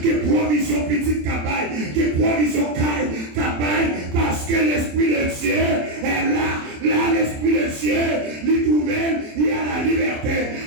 qui est provision petite cabaye, qui est provision cabaye, parce que l'Esprit de Dieu est là. Là, l'Esprit de Dieu, il trouve, il y a la liberté,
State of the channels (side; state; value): left; late; 27 ms